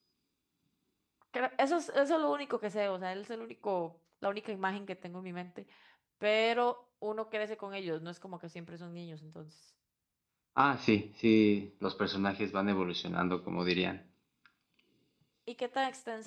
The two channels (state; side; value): identical; both; correlation 1.00